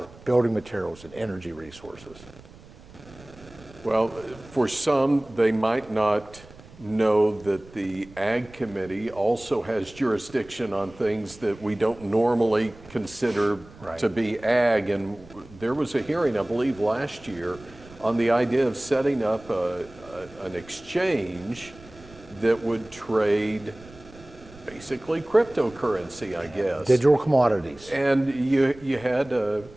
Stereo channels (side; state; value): right; noise; rumble, 21 dB below the sound